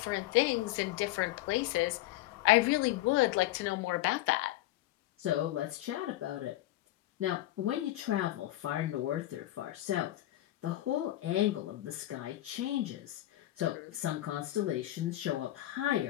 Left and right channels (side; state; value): right; quieter; 15.7 dB